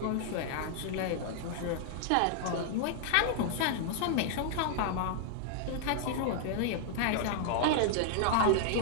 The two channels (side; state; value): both; different; correlation -0.01